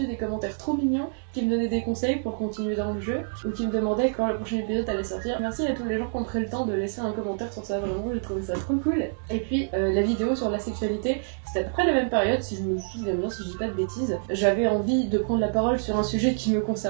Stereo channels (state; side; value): silent; left; digital silence